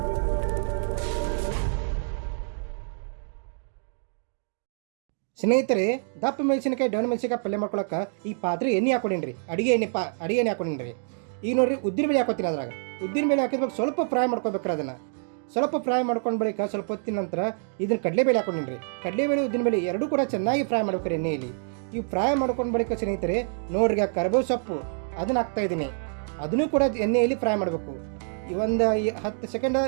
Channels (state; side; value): silent; left; digital silence